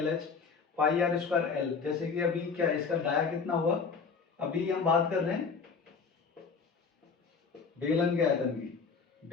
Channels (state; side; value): quieter; right; 5.3 dB